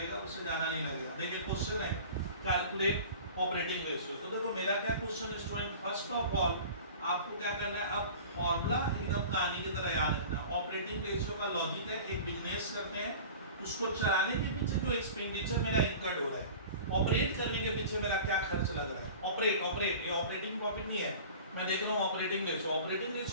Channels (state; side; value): inverted; both; correlation -0.39